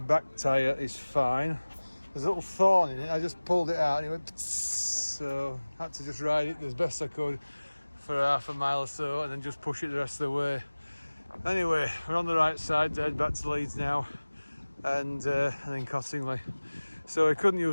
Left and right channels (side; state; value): both; inverted; correlation -1.00